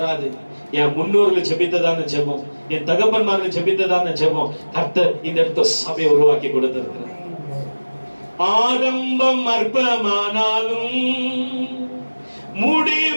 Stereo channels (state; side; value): inverted; both; correlation -1.00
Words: என் முன்னோர்கள் ஜெபித்ததான ஜெபம், என் தகப்பன்மார்கள் ஜெபித்ததான ஜெபம் கர்த்தர் இந்த இடத்துல சபையை உருவாக்கி கொடுத்திருக்கிறார். ஆரம்பம் அற்பமானாலும்